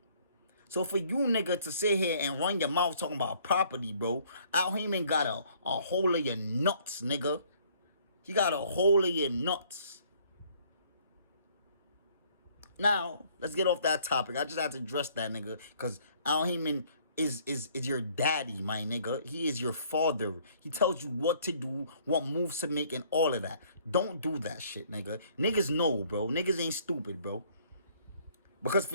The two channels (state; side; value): inverted; both; correlation -0.60